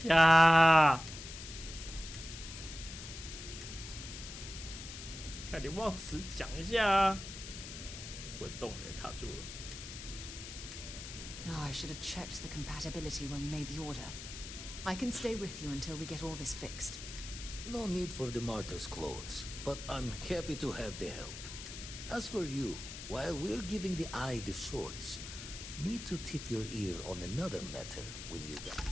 呀！看你忘词讲一下啊！滚动也卡住了。Oh, I should have checked the compatibility when we made the order. I can stay with you until we get all this fixed. No need for the martyr's clothes, but I'm happy to have the help. As for you, while we're giving the eye the swords, need to tip your ear on another matter when you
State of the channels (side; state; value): left; noise; hiss, 10 dB below the sound